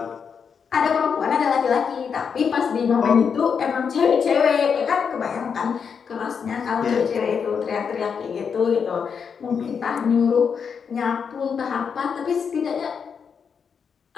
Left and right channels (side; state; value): right; quieter; 6.5 dB